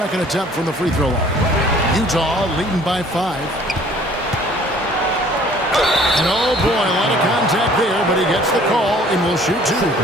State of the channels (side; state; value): both; normal; correlation 0.54